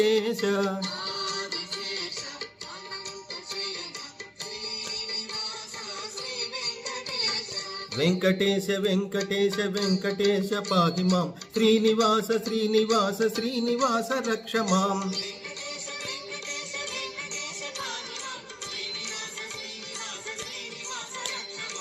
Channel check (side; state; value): both; identical; correlation 1.00